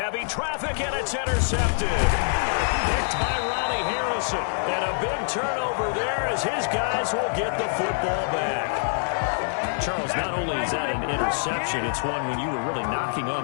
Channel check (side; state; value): right; silent; 62 dB below the other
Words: traffic, and it's intercepted. Picked by Ronnie Harrison. And a big turnover there as his guys will get the football back. Charles, not only is that an interception, it's one when you were really knocking